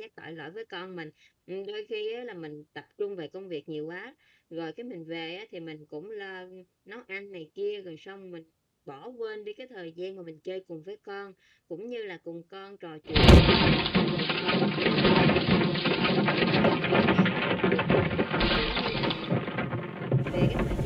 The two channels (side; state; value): both; identical; correlation 1.00